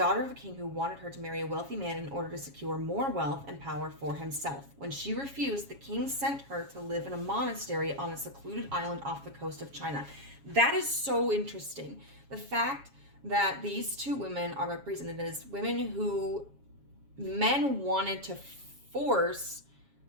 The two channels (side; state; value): left; late; 7.3 ms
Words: of a king who wanted her to marry a wealthy man in order to secure more wealth and power for himself. When she refused, the king sent her to live in a monastery on a secluded island off the coast of China. That is so interesting. The fact that these two women are represented as women who men wanted to force